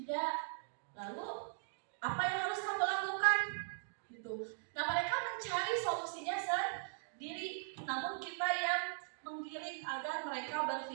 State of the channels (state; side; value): silent; left; digital silence